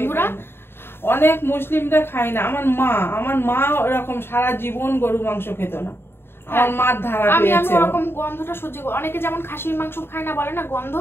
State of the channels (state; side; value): late; right; 0.11 ms